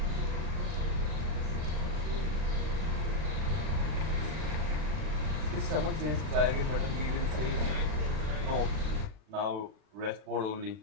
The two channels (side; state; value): left; late; 40 ms